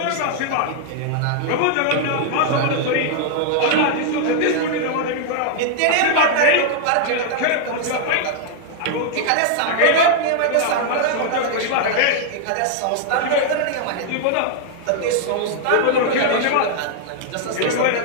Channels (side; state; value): both; different; correlation 0.00